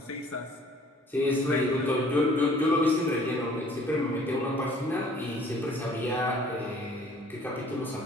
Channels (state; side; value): normal; both; correlation 0.55